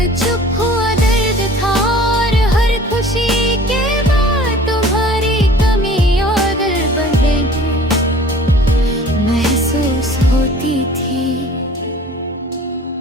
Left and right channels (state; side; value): normal; both; correlation 0.48